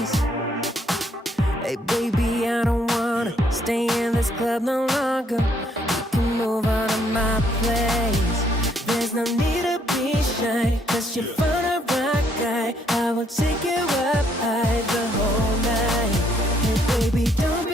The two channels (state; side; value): normal; both; correlation 0.69